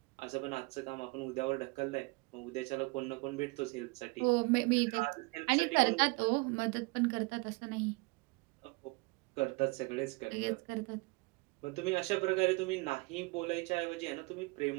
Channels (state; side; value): quieter; left; 27.1 dB